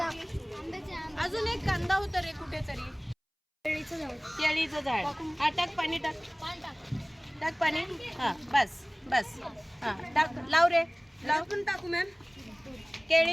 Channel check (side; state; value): both; identical; correlation 1.00